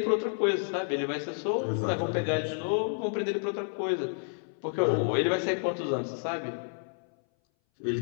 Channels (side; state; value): right; silent; 58 dB below the other